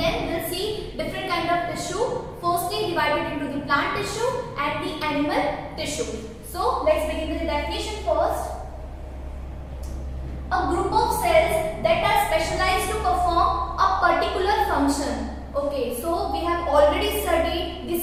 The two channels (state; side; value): identical; both; correlation 1.00